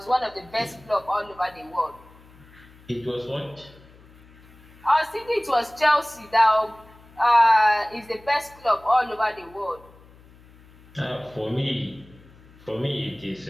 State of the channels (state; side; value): noise; left; hum, 25 dB below the sound